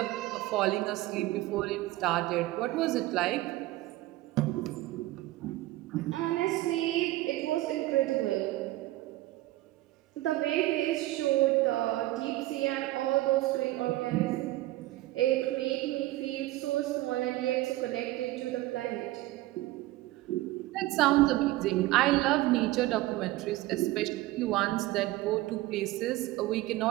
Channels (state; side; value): quieter; left; 17.4 dB